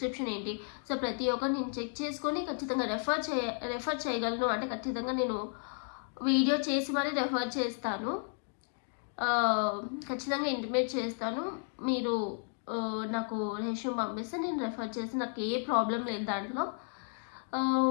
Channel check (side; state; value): right; silent; 56 dB below the other